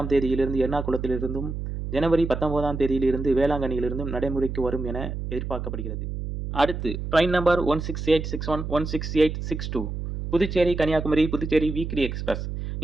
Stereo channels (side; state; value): right; noise; hum, 5 dB below the sound